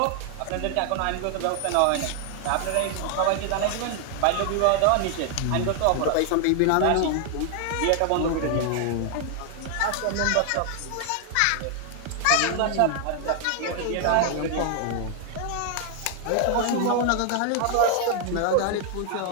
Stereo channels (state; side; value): different; both; correlation 0.00